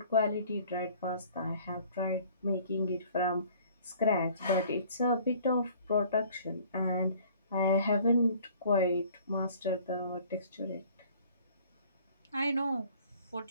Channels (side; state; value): both; inverted; correlation -0.53